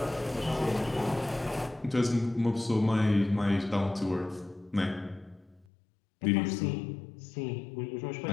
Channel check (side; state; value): right; drops out; at 5.7 s